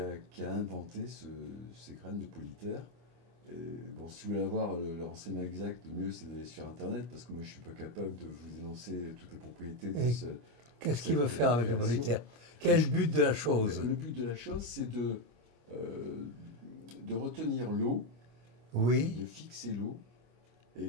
inventé ces graines de Polytère. Et bon, si vous voulez avoir le renseignement exact, le mieux c'est d'aller sur Internet, parce que moi je ne suis pas capable de vous énoncer toutes les propriétés de ce... Qu'est-ce qu'il veut faire avec le Polytère? Quel but de la chose? Le but de la chose, c'est de retenir l'eau, oui, de fixer l'eau, et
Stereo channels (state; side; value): late; left; 25 ms